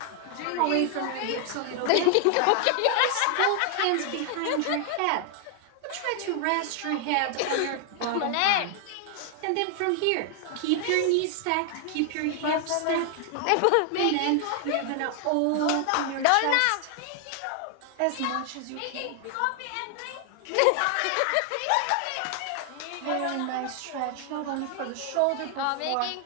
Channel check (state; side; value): different; both; correlation 0.00